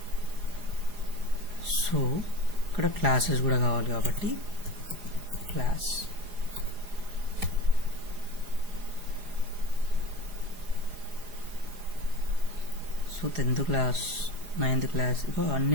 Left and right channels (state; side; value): late; left; 4.9 ms